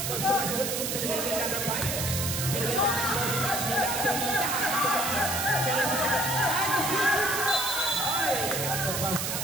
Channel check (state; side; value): noise; right; hiss, 1 dB below the sound